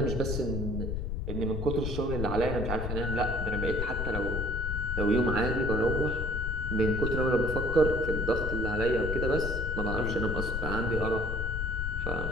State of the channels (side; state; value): left; noise; rumble, 3 dB below the sound